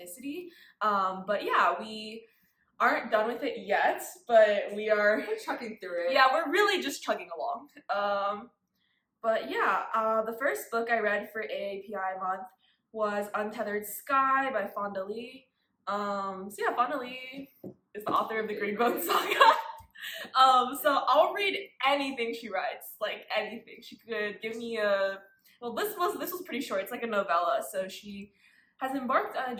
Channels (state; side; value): identical; both; correlation 1.00